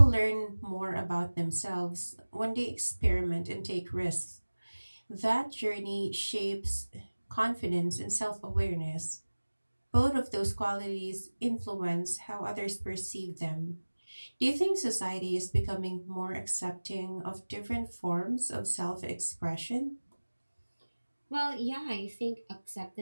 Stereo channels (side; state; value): both; inverted; correlation -1.00